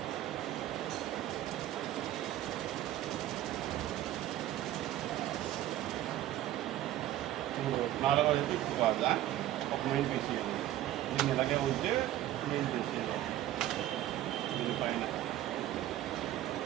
నాలుగో వైపు ఇప్పుడు కాదా ఒక మెయిన్ పీస్ చేయాలి. దీన్ని ఇలాగే ఉంటే మెయిన్ పీస్ చేయాలి. దీనిపైన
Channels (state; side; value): quieter; left; 13.6 dB